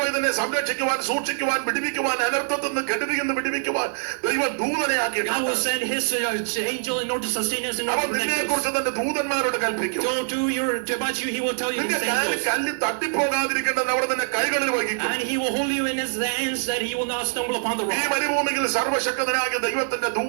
ഇതിനെ സംരക്ഷിക്കുവാൻ സൂക്ഷിക്കുവാൻ വിടുവിക്കുവാൻ അനർത്ഥത്തിൽ നിന്ന് കെടുതിയിൽ നിന്ന് വിടുവിക്കുവാൻ ദൈവം ദൂതനെ God will ആക്കിയിട്ടുണ്ട്. send his angel in order to sustain us and അവൻ protect നിന്നെ us. കുറിച്ച് തന്റെ ദൂതന്മാരോട് കൽപ്പിക്കും. So about you, he will tell you നിന്റെ his കാലിൽ angels. കല്ല് തട്ടിപ്പോകാതിരിക്കേണ്ടത് അവിടെ തന്നെ കൈകളിൽ വഹിക്കും. And he will hold you in his hands that he will not stumble upon the ഈ rock. മരുഭൂമിയിൽ സർവശക്തനായ ദൈവത്തിന്റെ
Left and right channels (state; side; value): silent; left; 62 dB below the other